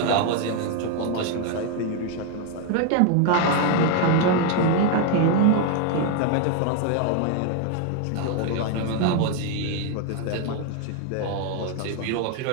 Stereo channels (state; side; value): different; both; correlation 0.01